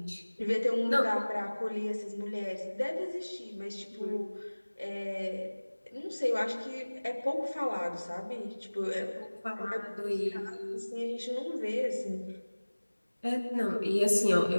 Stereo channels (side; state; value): both; inverted; correlation -1.00